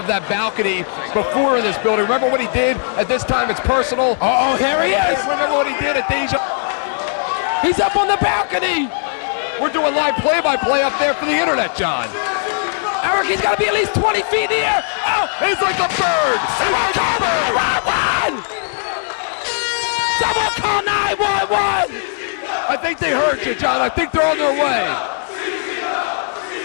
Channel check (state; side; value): silent; right; digital silence